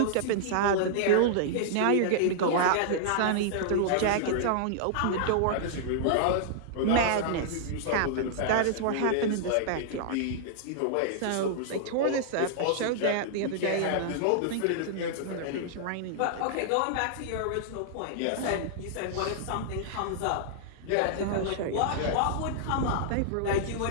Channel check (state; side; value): different; both; correlation -0.01